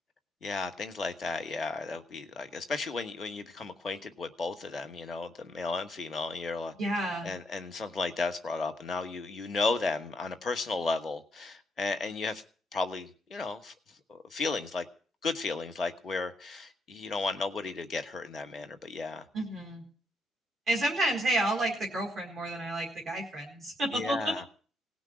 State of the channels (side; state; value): both; normal; correlation 0.76